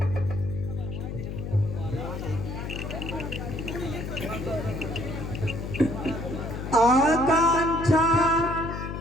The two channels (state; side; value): noise; left; hum, 6 dB below the sound